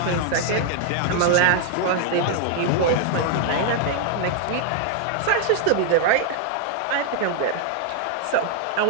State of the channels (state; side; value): different; both; correlation 0.00